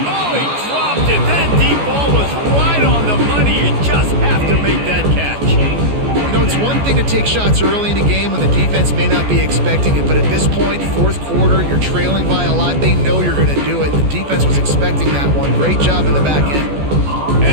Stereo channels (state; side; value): late; left; 14 ms